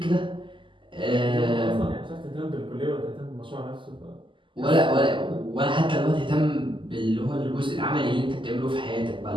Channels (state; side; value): late; left; 0.24 ms